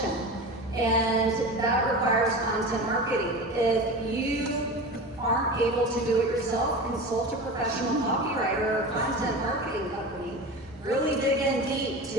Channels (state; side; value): normal; both; correlation 0.30